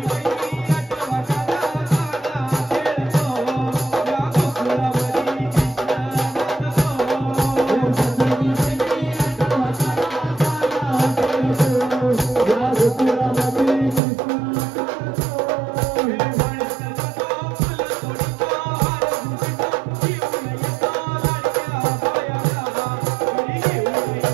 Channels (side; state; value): left; drops out; at 14.0 s